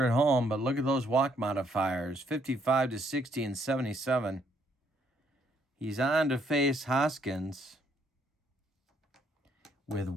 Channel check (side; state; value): both; normal; correlation 0.70